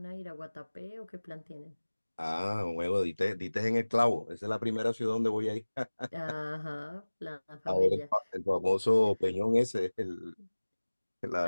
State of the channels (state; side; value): inverted; both; correlation -1.00